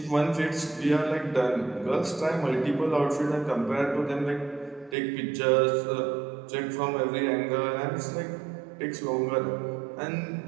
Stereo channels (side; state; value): left; drops out; at 5.0 s